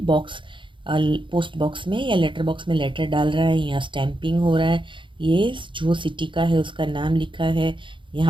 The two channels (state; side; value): late; left; 0.24 ms